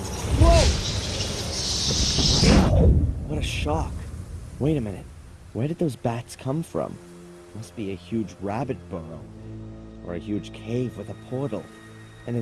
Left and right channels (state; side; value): identical; both; correlation 1.00